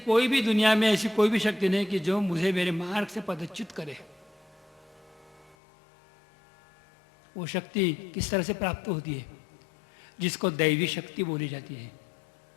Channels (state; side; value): drops out; right; at 5.6 s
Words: भी दुनिया में ऐसी कोई भी शक्ति नहीं कि जो मुझे मेरे मार्ग से पदच्युत करे? वो शक्ति किस तरह से प्राप्त होती है? जिसको दैवी शक्ति बोली जाती है,